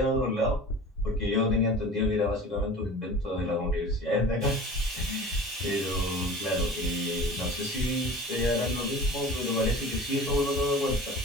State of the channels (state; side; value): normal; both; correlation 0.39